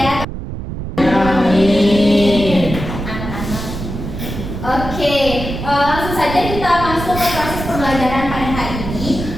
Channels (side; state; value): right; noise; rumble, 7 dB below the sound